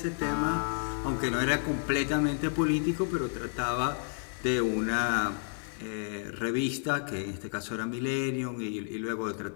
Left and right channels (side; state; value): right; silent; 57 dB below the other